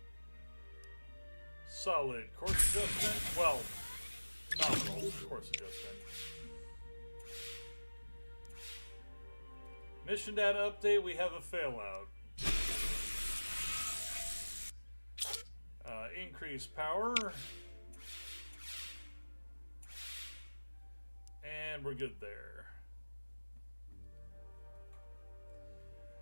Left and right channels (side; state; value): both; inverted; correlation -1.00